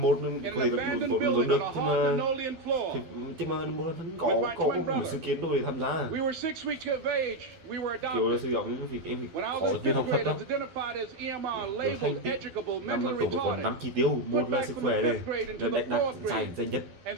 abandoned building on a hard linoleum floor, with my twin brother. We were 6 weeks of age. We were adopted. When I was in 5th grade, I was identified as EMR, labeled educable, mentally retarded. Put back from the 5th grade into the 4th grade,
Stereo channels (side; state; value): left; late; 12 ms